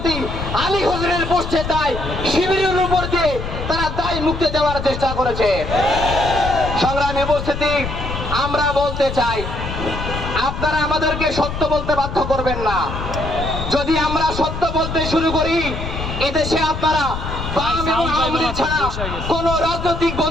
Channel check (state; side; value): noise; left; rumble, 6 dB below the sound